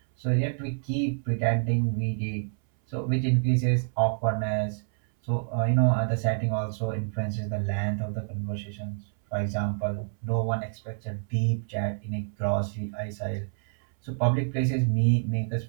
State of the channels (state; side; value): silent; left; 60 dB below the other